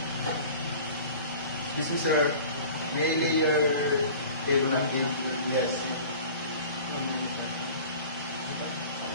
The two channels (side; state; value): both; inverted; correlation -0.42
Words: Excuse me, sir. May I lay your paper napkin? Yes.